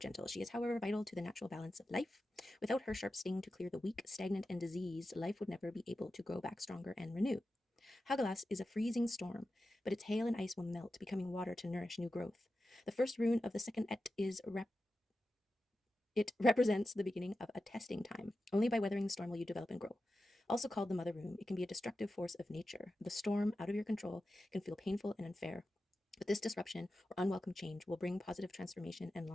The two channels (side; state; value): both; normal; correlation 0.92